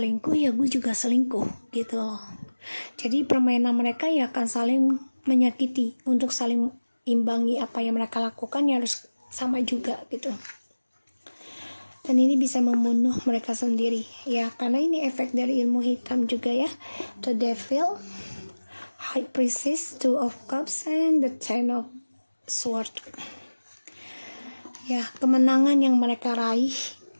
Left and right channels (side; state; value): both; inverted; correlation -1.00